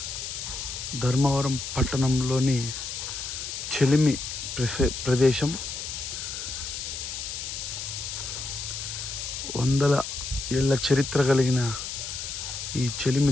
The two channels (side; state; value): left; noise; hiss, 6 dB below the sound